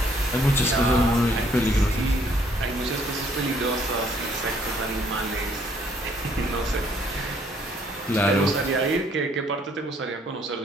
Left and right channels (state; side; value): normal; both; correlation 0.65